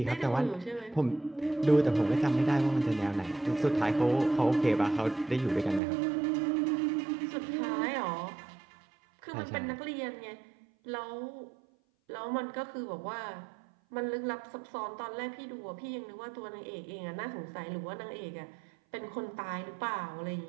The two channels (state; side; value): drops out; left; at 5.8 s